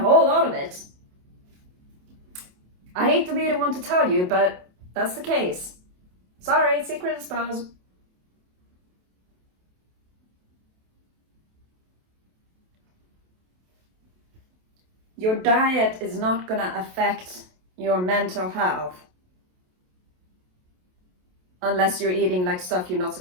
lot of it. I hate to be the one to tell you, but that's the case. Sorry, secret exposed. Your diet is not gonna affect your mental health unless you're eating like stuff you're not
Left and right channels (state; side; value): late; left; 27 ms